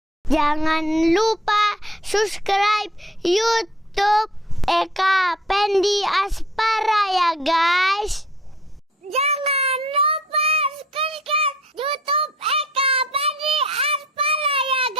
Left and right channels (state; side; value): normal; both; correlation 0.55